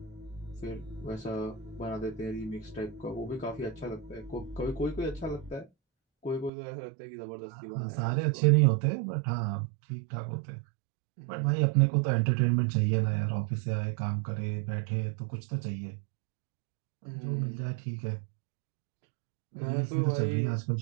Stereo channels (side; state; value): left; drops out; at 6.5 s